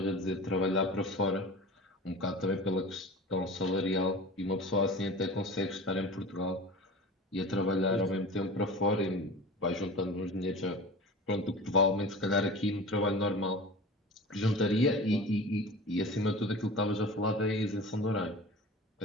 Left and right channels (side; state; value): both; normal; correlation 0.36